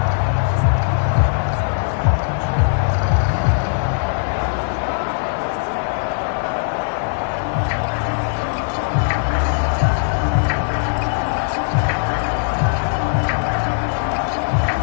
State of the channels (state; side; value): silent; right; 55 dB below the other